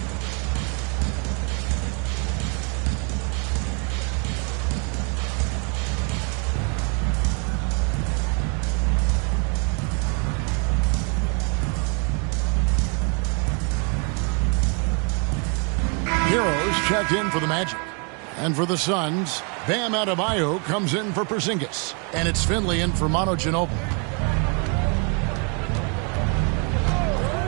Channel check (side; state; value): left; quieter; 36.4 dB